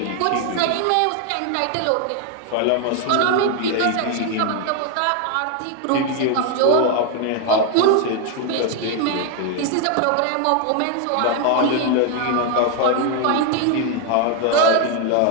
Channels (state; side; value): different; both; correlation 0.01